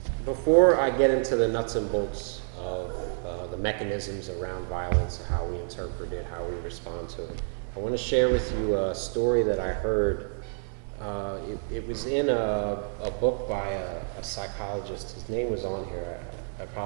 before I get into the nuts and bolts of the mechanisms around violence, how we interpret it, how we respond to it, I want to share with you a story that I heard. It was in a book by a psychologist. His name was on here. I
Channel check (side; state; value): left; silent; digital silence